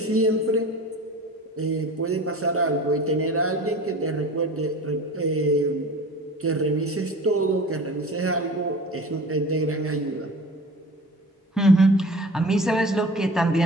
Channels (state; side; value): normal; both; correlation 0.39